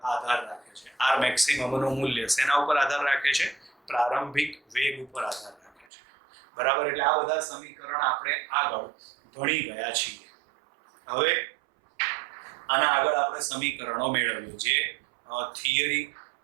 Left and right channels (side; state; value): left; drops out; at 5.9 s